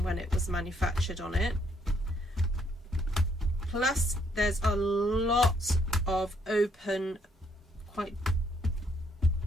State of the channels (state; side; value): normal; both; correlation 0.70